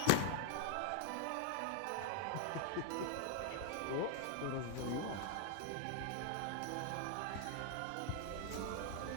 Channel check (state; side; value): different; both; correlation 0.00